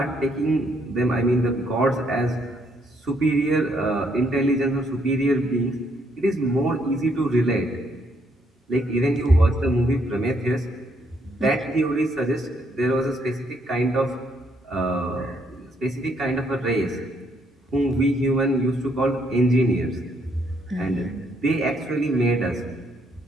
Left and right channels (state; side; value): normal; both; correlation 0.71